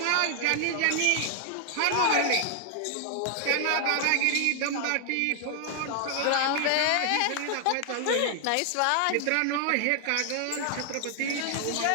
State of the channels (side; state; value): both; different; correlation 0.00